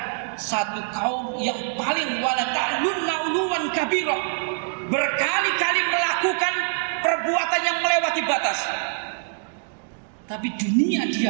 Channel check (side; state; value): left; silent; 57 dB below the other